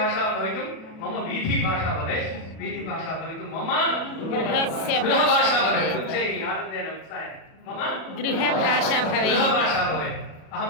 भवितुं मम वीथिभाषा भवेत्, वीथिभाषा भवितुं मम गृहभाषा भवेत्। उच्चैः आनन्देन उत्साहेन मम गृहभाषा भवेत्। गृहभाषा भवेत्। अहं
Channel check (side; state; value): right; late; 37 ms